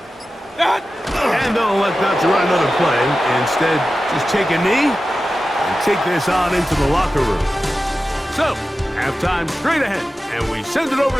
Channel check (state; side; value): normal; both; correlation 0.94